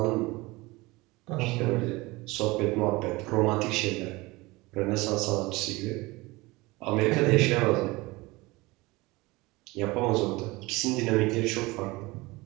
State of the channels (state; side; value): quieter; left; 22.2 dB